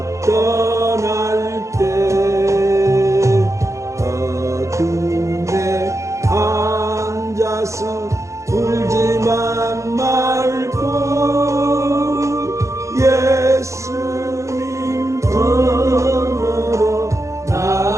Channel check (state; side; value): late; left; 0.15 ms